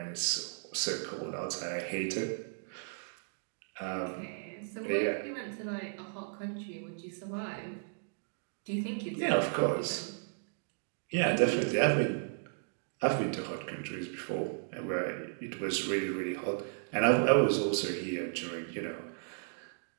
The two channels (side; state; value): left; silent; digital silence